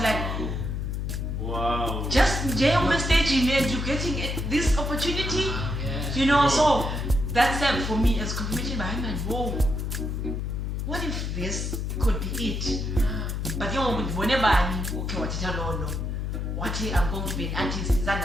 like, wow, just on the stage and you getting this opportunity. So that's for me as confirmation behind my whoa. What if this could be it? But whenever I'm okay, what I'm going to be an artist,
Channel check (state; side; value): noise; left; hum, 2 dB below the sound